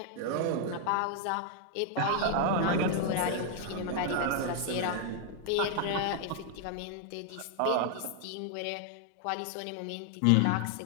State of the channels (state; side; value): different; both; correlation 0.00